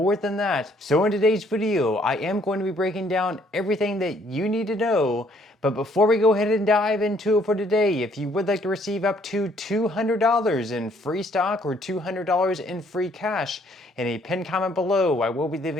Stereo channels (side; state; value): both; normal; correlation 0.65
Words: than that. So in today's video, I am going to be breaking down everything that you need to know. But before we go ahead and dive into it for today, if you would like to receive up to $200 in free stock or $200 in free cash, in a pinned comment below, I will be